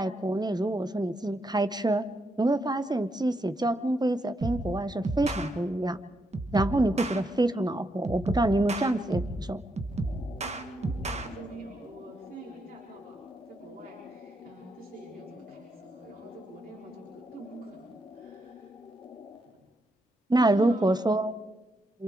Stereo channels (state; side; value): normal; both; correlation 0.80